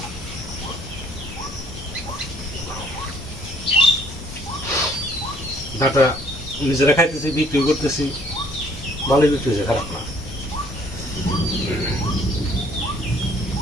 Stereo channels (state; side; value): normal; both; correlation 0.61